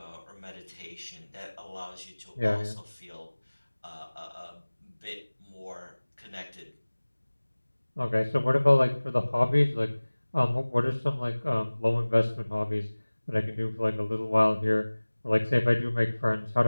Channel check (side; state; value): both; inverted; correlation -1.00